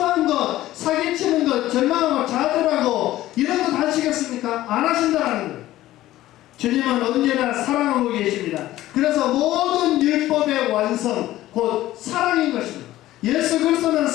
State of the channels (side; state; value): right; quieter; 15.2 dB